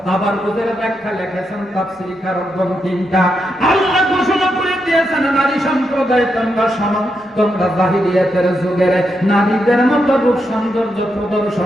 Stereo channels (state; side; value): normal; both; correlation 0.83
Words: তাবাররুজের ব্যাখ্যা লিখেছেন তাফসীরকারগণ 3টা। আল্লাহ ঘোষণা করে দিয়ে দিয়েছেন নারী সম্প্রদায় তোমরা শোনো, তোমরা জাহিলিয়াতের যুগের নারীদের মতো রূপ সৌন্দর্য